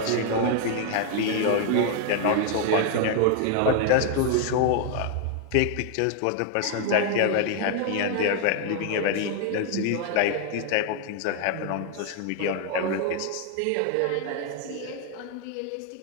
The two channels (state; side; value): different; both; correlation 0.00